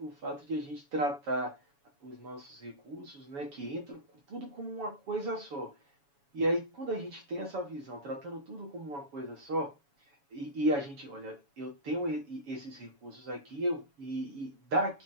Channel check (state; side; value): late; left; 7.1 ms